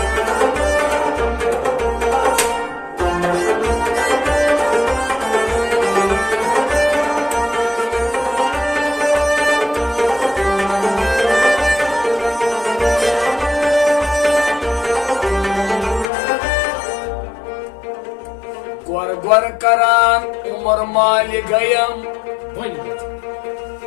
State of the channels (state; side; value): drops out; right; at 16.1 s